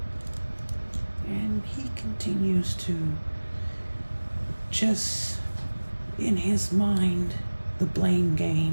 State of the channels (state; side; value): inverted; both; correlation -1.00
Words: And he continues to just, in his mind, the blame